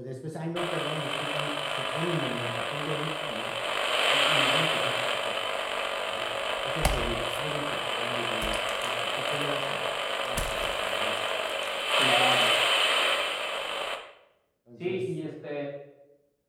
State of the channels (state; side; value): identical; both; correlation 1.00